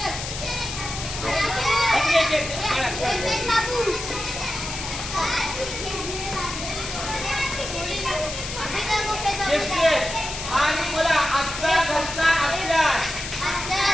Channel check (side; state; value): left; noise; hiss, 7 dB below the sound